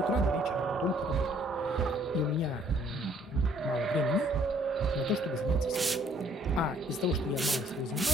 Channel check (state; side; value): normal; both; correlation 0.62